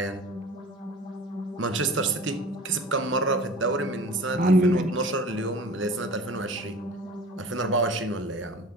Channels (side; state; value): both; normal; correlation 0.41